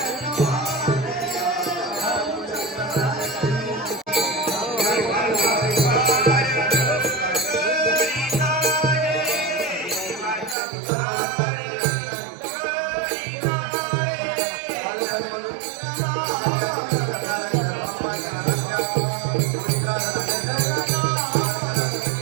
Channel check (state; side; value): drops out; left; at 10.6 s